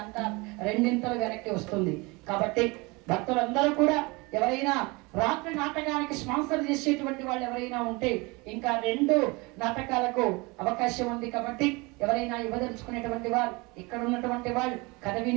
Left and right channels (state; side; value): quieter; left; 25.8 dB